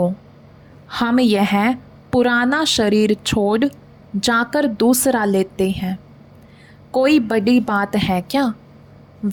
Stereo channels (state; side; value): identical; both; correlation 1.00